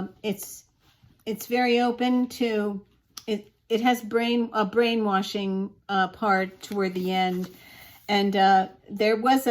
open to it. It has a brainwashing part toward the end, and there was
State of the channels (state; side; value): identical; both; correlation 1.00